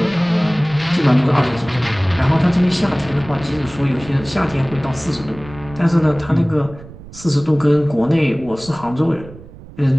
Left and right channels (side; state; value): right; noise; rumble, 18 dB below the sound